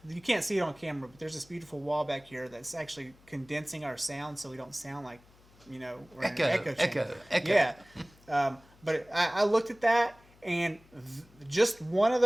You can't see it on camera, but there's this beautiful wall back here that's actually condensing our sound so we don't sound like, we're in an echo chamber. Yeah. But I looked at that, and just one of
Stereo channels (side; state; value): left; noise; hum, 27 dB below the sound